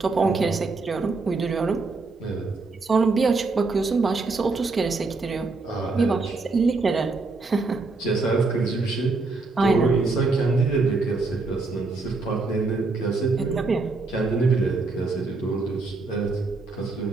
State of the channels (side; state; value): left; quieter; 3.8 dB